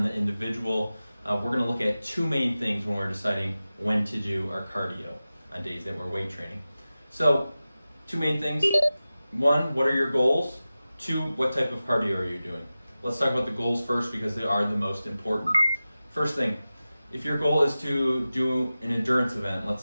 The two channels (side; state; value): both; inverted; correlation -0.95